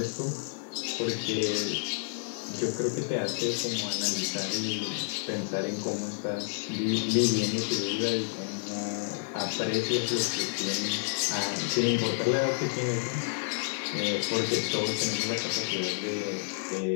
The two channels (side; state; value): right; silent; digital silence